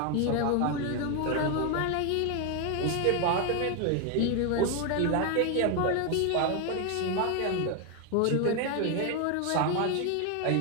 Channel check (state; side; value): different; both; correlation 0.01